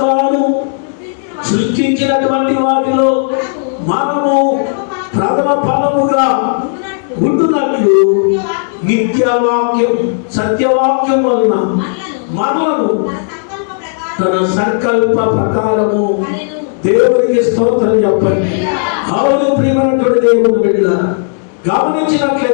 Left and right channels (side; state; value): right; silent; digital silence